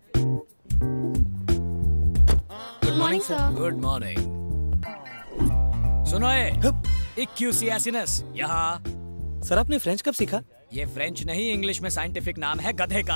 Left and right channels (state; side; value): inverted; both; correlation -1.00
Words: Good morning sir. Good morning. सुनो इक्यूसियासिनस, यहाँ। सर आपने फ्रेंच कब सीखा? ये फ्रेंच नहीं, इंग्लिश में साइंटिफिक नाम है गधे